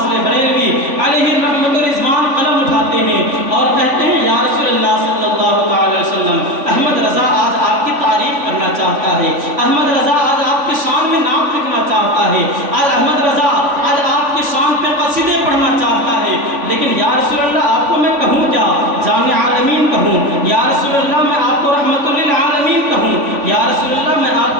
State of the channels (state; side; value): late; left; 3.5 ms